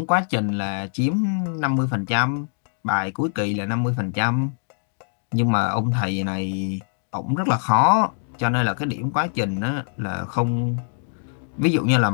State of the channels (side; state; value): right; silent; digital silence